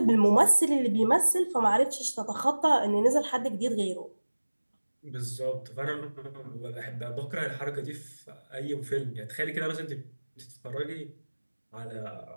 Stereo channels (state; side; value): inverted; both; correlation -1.00